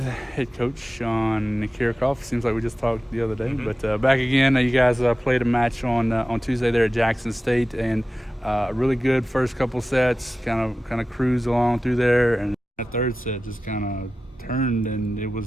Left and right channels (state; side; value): normal; both; correlation 0.95